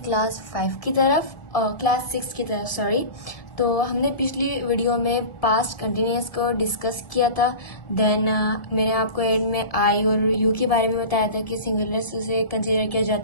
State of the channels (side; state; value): right; late; 1.7 ms